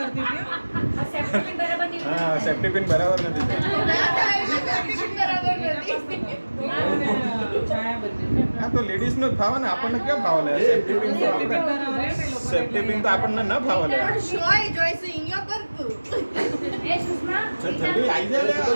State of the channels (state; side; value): inverted; both; correlation -1.00